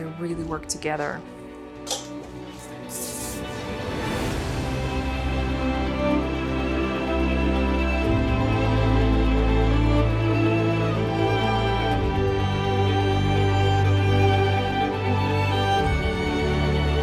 really work together.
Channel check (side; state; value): both; identical; correlation 1.00